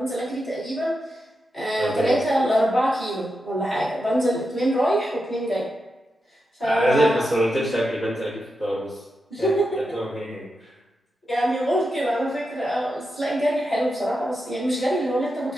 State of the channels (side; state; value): both; normal; correlation 0.88